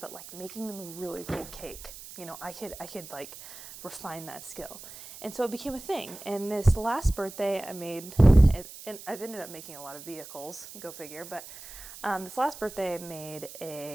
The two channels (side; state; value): right; noise; hiss, 15 dB below the sound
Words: but like making them a really cool cake. I could like refine that skill. And so it became a thing. And this last birthday I made it, and I've ended up making a lot of vehicles, go figure, but this last birthday I made